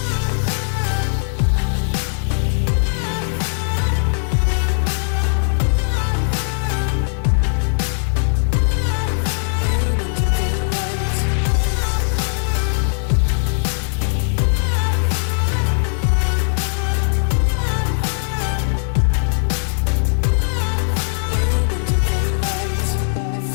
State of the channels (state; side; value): silent; right; 58 dB below the other